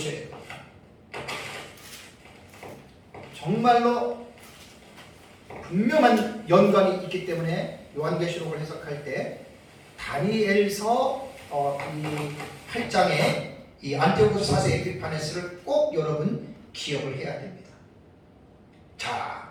돼요. 정말로 분명한 연관이 있기 때문에 요한계시록을 해석할 때 다니엘서 이 8장의 이 안티오코스 4세 에피파네스를 꼭 여러분 기억을 해야 됩니다.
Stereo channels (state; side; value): identical; both; correlation 1.00